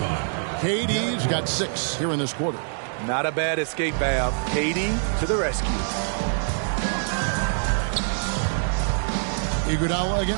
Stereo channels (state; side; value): silent; left; 62 dB below the other